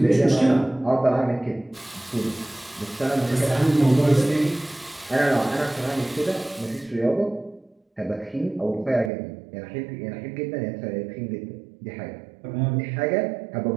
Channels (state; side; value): drops out; left; at 9.1 s